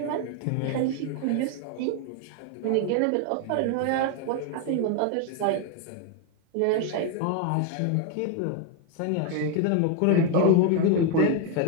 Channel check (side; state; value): both; different; correlation 0.01